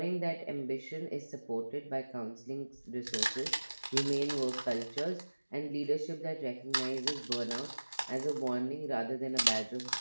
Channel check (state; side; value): inverted; both; correlation -1.00